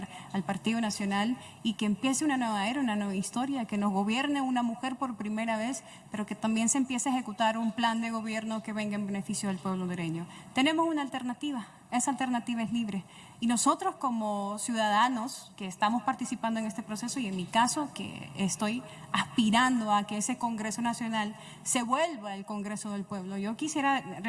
al Partido Nacional y que empiece una nueva era, una nueva historia, que nos gobierne una mujer por primera vez, pero que también se empiece a ejecutar un plan de gobierno que venga en beneficio del pueblo hondureño. Tenemos una alternativa, esa alternativa es Libre. Y nosotros como ciudadanos que estamos participando en este proceso, y en mi caso que estoy aspirando a que ese Congreso Nacional se vuelva el Congreso del Pueblo, yo quisiera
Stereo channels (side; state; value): both; identical; correlation 1.00